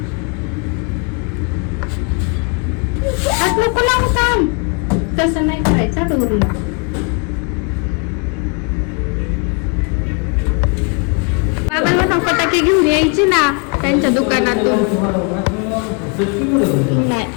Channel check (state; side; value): quieter; right; 35.3 dB